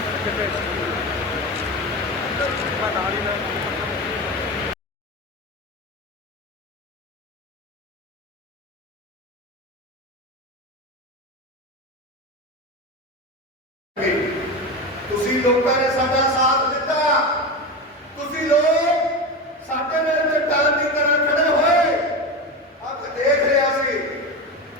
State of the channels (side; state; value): both; normal; correlation 0.22